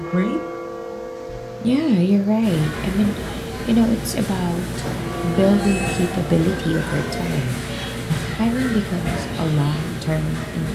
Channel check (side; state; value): both; identical; correlation 1.00